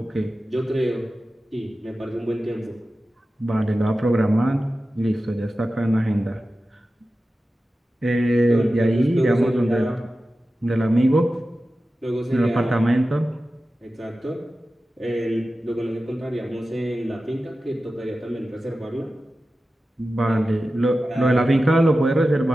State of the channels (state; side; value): normal; both; correlation 0.94